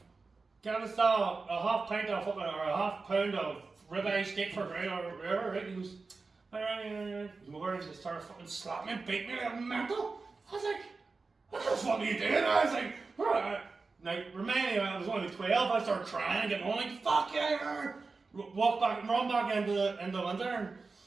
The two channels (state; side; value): quieter; left; 4.1 dB